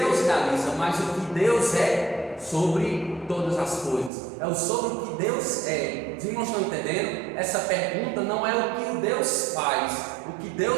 realiza, mas o que Deus é sobre todas as coisas. É o sobre o que Deus é. Vocês não estão entendendo? Essa pergunta não é o que o Deus faz, o que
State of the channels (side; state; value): left; drops out; at 4.1 s